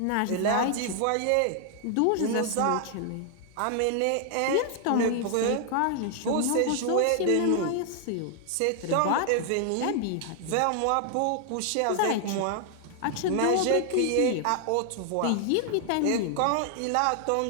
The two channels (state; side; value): different; both; correlation 0.00